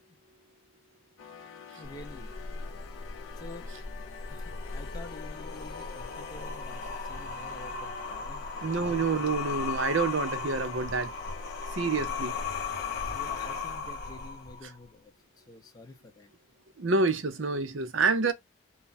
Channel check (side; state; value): both; normal; correlation 0.16